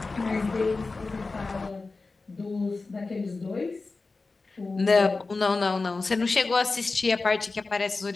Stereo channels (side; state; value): right; quieter; 3.8 dB